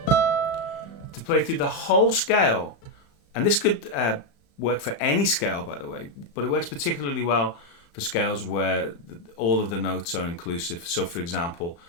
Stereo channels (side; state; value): right; late; 35 ms